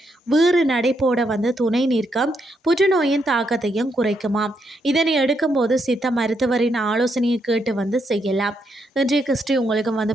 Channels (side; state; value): both; normal; correlation 0.78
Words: வீறு நடைபோட துணை நிற்கும், புற்றுநோயின் தாக்கத்தையும் குறைக்குமாம். இதனை எடுக்கும்போது சித்த மருத்துவரின் ஆலோசனையை கேட்டு செய்யலாம். இன்றைய கிறிஸ்டி